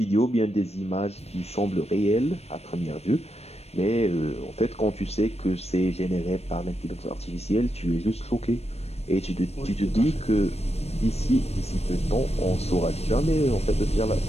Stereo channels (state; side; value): late; right; 0.31 ms